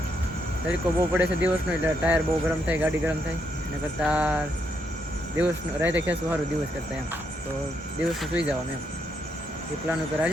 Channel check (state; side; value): normal; both; correlation 0.77